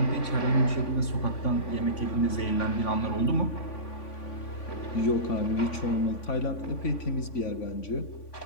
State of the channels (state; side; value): late; right; 3.5 ms